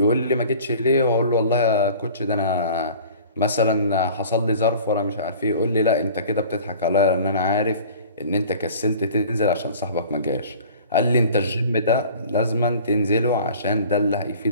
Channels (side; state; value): both; inverted; correlation -0.45